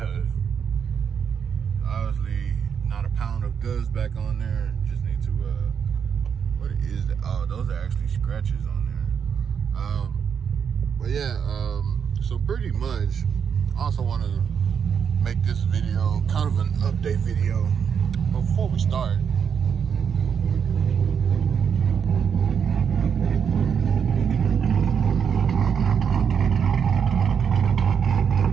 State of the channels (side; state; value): left; quieter; 7.2 dB